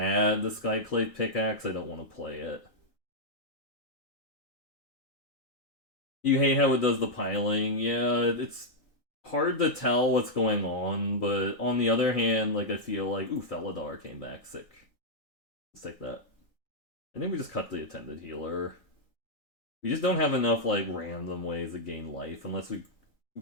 The Skyclave Pickaxe, I don't want to play it. You hate how it does the piling. Yeah, it's hard to tell what's going on, but on the other hand, like I feel like, ooh, Felidar came back sick. Let's take that. I think we just cut the Attended Healer. We just don't have enough like random ways to gain life unless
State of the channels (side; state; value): right; late; 3.8 ms